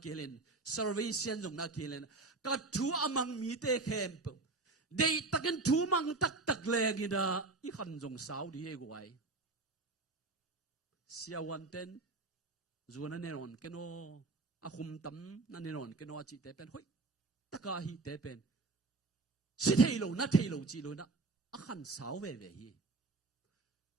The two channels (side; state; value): left; quieter; 3.5 dB